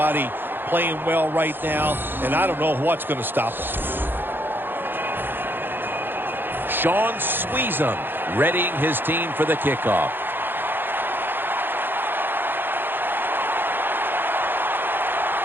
playing well right now, and I don't know what's going to stop them. Sean Sweezum readying his team for the kickoff.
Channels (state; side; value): late; left; 0.099 ms